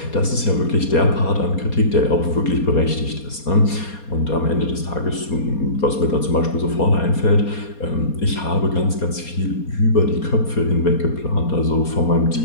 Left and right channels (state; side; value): late; right; 4.2 ms